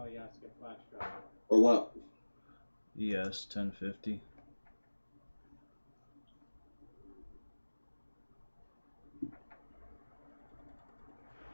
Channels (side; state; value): both; inverted; correlation -1.00